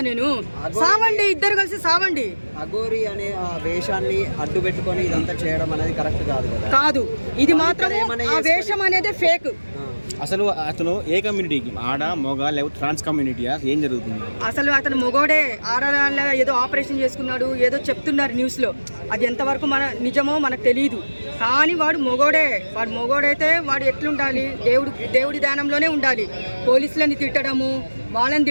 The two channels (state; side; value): inverted; both; correlation -1.00